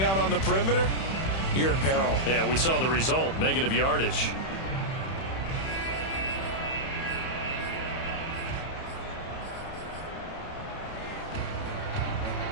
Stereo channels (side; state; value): right; late; 31 ms